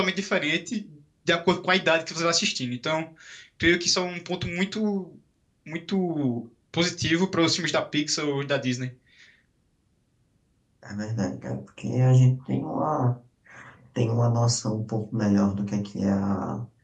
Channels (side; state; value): both; identical; correlation 1.00